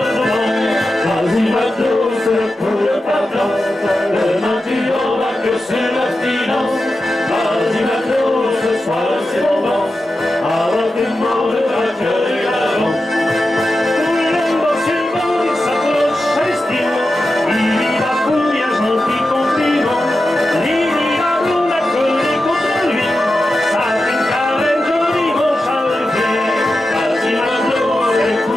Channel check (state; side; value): normal; both; correlation 0.91